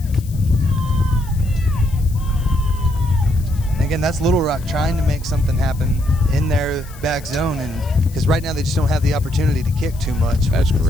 And again, that's Little Rock trying to make something happen in their back zone, and because right now they just don't have the opportunity to kick too much. That's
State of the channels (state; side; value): noise; left; hiss, 21 dB below the sound